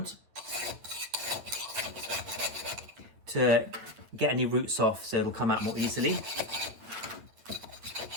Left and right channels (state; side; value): late; left; 9.2 ms